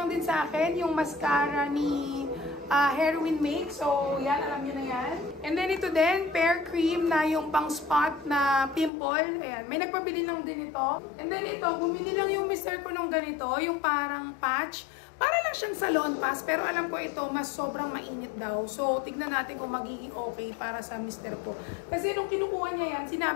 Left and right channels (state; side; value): drops out; right; at 8.9 s